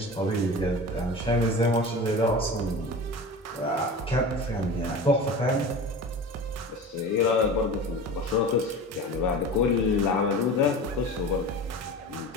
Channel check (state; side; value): normal; both; correlation 0.33